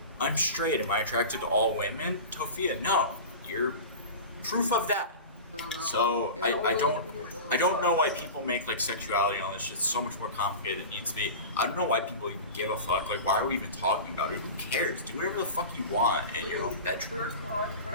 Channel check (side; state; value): both; inverted; correlation -0.31